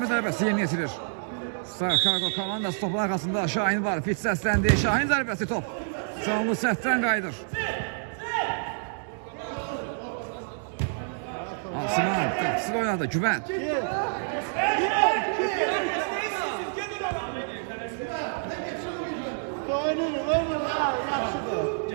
zərbəsi yeni yetirir. Star Cargo komandası topun arasında Şahin var. Fit səsləndi. Şahin zərbəsi top. Canlı səhvdən qayıdır. Asiman qapısını oynadı. Güvən.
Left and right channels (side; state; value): left; silent; digital silence